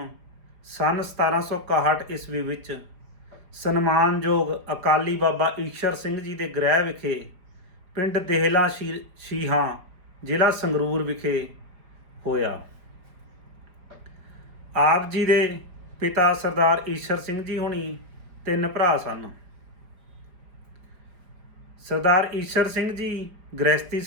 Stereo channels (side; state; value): left; late; 4.9 ms